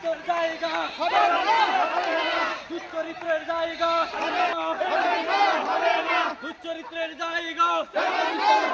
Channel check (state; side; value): identical; both; correlation 1.00